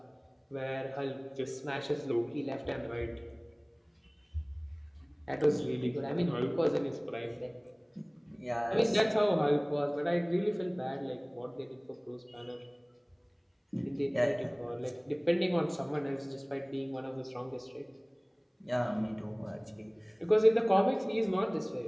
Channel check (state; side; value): identical; both; correlation 1.00